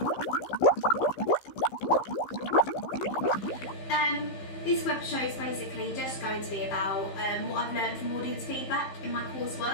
This web show is basically just going to be about what I've learned from audience feedback in my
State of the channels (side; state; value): right; late; 15 ms